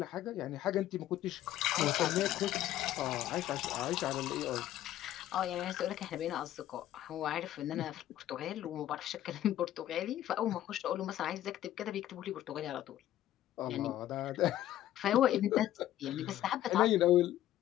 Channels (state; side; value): quieter; right; 13.0 dB